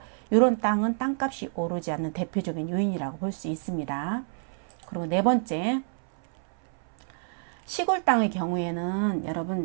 이런 땅은 땅값이 오르지 않는 대표적인 요인이라고 볼 수 있습니다. 그리고 네 번째, 시골 땅의 경우에는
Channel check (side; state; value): left; silent; 59 dB below the other